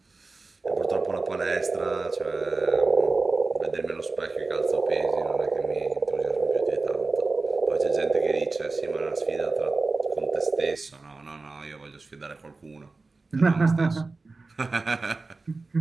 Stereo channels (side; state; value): left; quieter; 3.7 dB